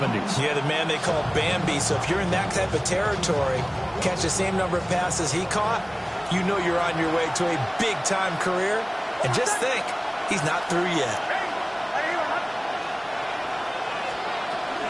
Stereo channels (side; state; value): both; identical; correlation 1.00